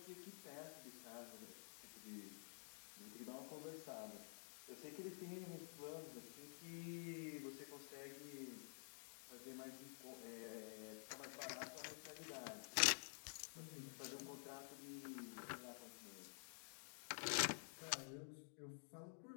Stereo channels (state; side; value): silent; right; digital silence